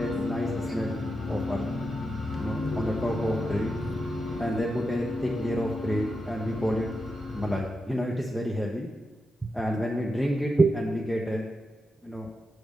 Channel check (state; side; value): normal; both; correlation 0.87